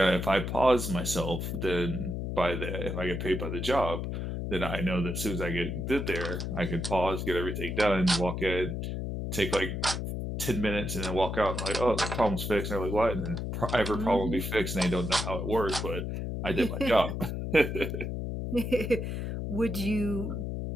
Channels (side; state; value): left; noise; hum, 3 dB below the sound